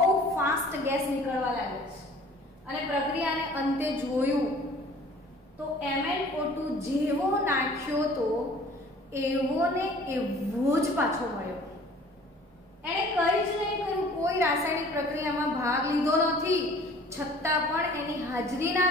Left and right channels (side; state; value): both; normal; correlation 0.50